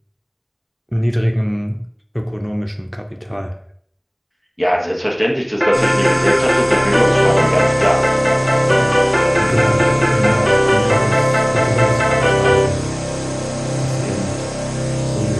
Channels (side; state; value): both; identical; correlation 1.00